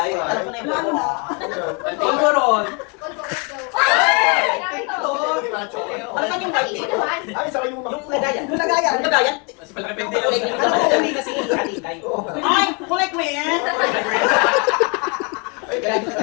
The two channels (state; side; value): quieter; right; 33.5 dB